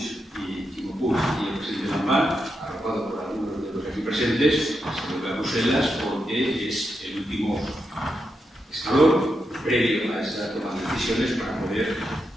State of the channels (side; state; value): both; normal; correlation 0.85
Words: y Quimo Puig y el presidente Lambán, arropado por algunos de los aquí presentes, se vuelve a Bruselas porque es el último escalón previo a esa toma de decisiones para poder